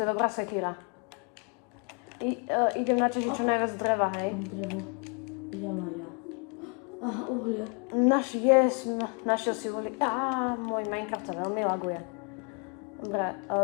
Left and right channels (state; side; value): quieter; right; 36.0 dB